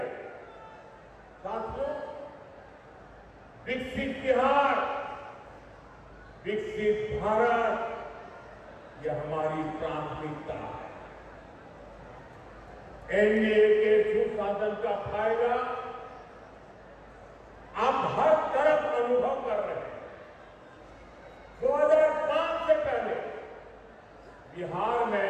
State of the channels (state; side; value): identical; both; correlation 1.00